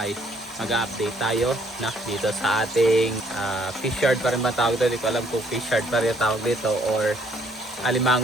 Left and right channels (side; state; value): both; normal; correlation 0.65